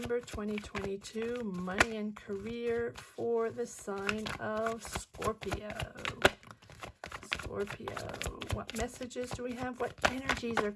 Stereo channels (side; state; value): both; identical; correlation 1.00